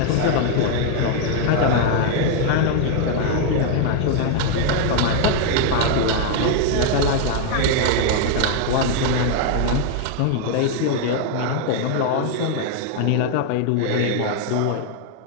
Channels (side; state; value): both; different; correlation 0.00